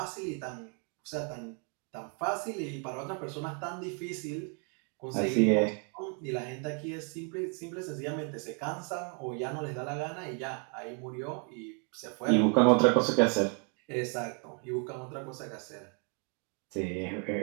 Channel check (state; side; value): quieter; left; 39.3 dB